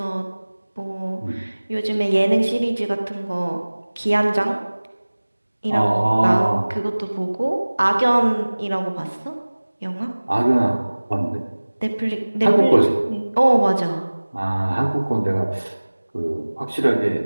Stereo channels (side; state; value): both; inverted; correlation -1.00